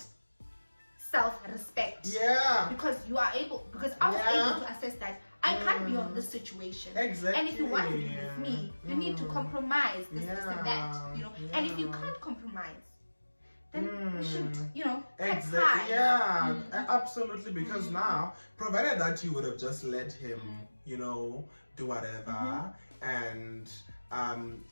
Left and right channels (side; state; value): both; inverted; correlation -1.00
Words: self-respect. Yeah. Because you are able, because I was able to assess that I can't be on this situation. Exactly. And if you want to be with me, you need to compromise this, this, and that. You know. And if you can't compromise, then we should, you know, cut ties. Yeah, absolutely. Because now, provided that you would have just let him, you know, do whatever, and